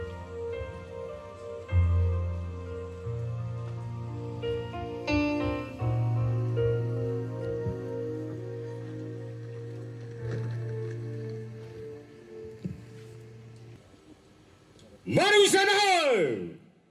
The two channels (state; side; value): identical; both; correlation 1.00